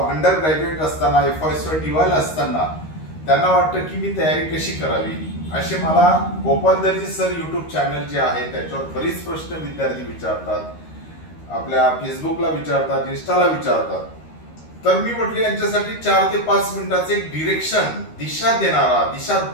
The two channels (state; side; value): late; right; 13 ms